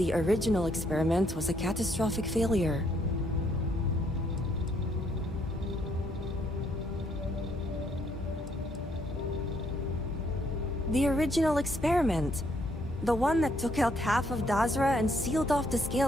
original experiment was a catastrophic failure. The original experiment. The one that took out half of Dazra and sealed off the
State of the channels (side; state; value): both; normal; correlation 0.70